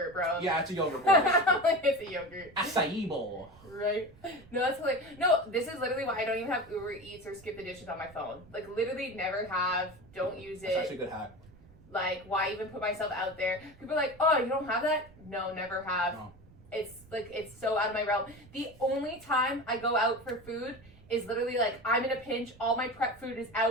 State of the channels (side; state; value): right; noise; rumble, 23 dB below the sound